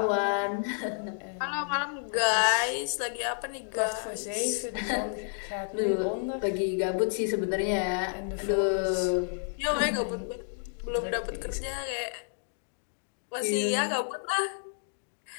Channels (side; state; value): right; silent; digital silence